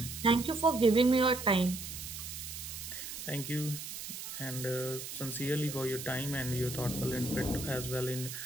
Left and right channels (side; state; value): right; noise; hiss, 8 dB below the sound